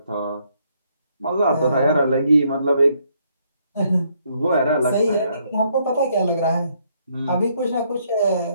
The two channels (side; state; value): both; inverted; correlation -0.71